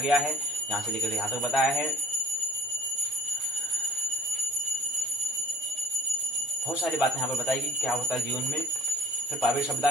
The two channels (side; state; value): both; normal; correlation 0.49